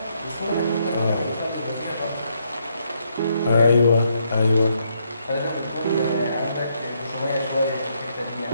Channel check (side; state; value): both; inverted; correlation -0.75